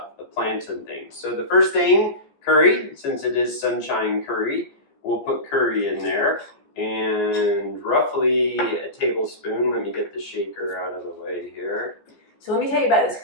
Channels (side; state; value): right; late; 14 ms